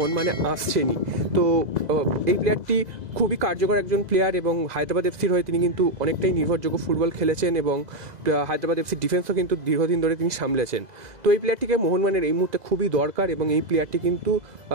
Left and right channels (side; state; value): left; late; 2.0 ms